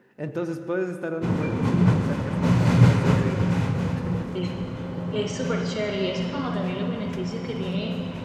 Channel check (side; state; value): both; identical; correlation 1.00